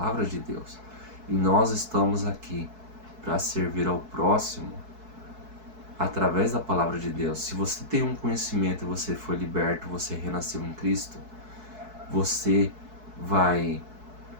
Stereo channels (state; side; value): late; left; 4.6 ms